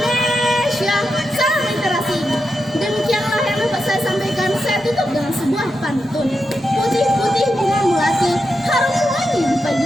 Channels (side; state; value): both; normal; correlation 0.87